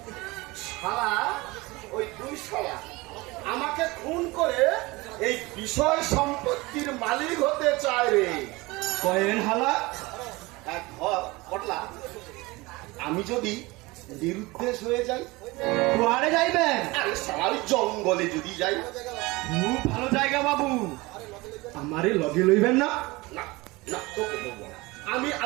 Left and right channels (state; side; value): quieter; left; 22.5 dB